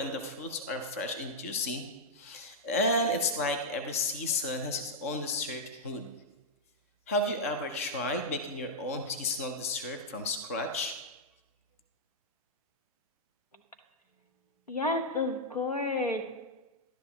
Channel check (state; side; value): normal; both; correlation -0.05